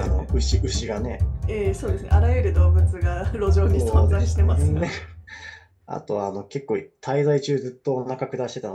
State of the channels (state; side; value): identical; both; correlation 1.00